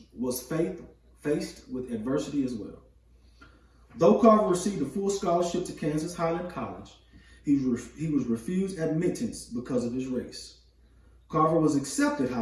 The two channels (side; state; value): both; identical; correlation 1.00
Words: was faced with adversity as well. Though Carver received a full scholarship to Kansas Highland College, he was refused admittance because of his race. Carver was accepted,